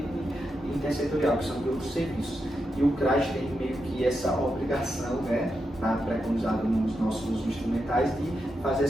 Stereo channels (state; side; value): normal; both; correlation 0.86